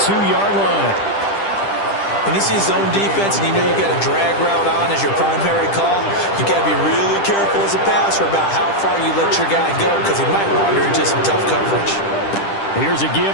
line. When you see zone defense and you know you got a drag route on as your primary call, you got to be really careful as a passer about how far you let your guy go because he might wander into some tough coverage. Here's a give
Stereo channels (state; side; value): late; right; 10 ms